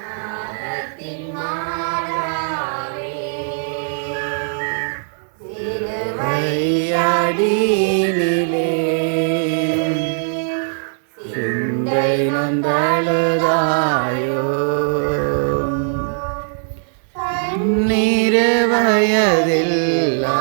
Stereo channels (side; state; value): left; silent; digital silence